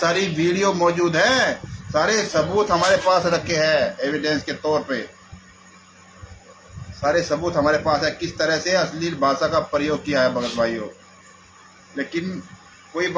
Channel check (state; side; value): identical; both; correlation 1.00